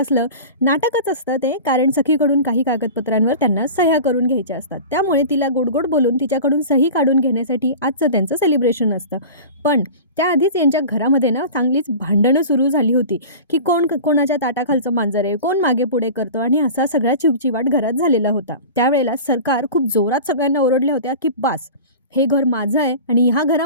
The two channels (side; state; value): both; inverted; correlation -0.35